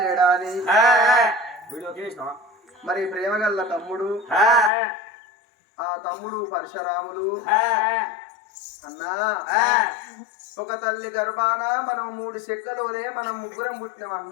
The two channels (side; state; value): right; drops out; at 4.7 s